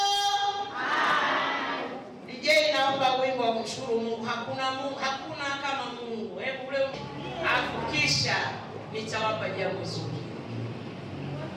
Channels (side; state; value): both; identical; correlation 1.00